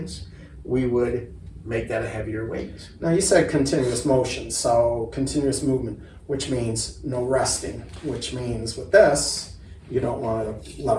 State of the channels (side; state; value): both; identical; correlation 1.00